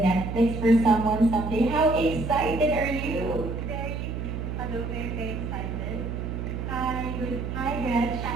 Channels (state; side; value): noise; right; hum, 5 dB below the sound